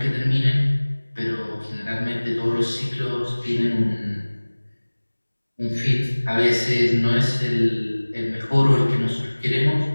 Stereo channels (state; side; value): inverted; both; correlation -1.00